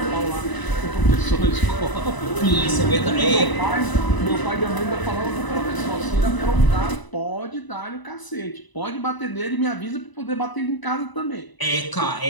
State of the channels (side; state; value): right; late; 1.0 ms